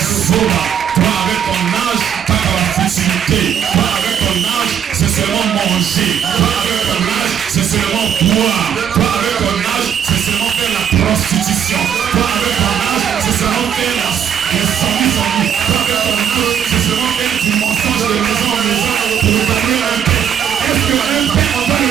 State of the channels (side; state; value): left; quieter; 8.7 dB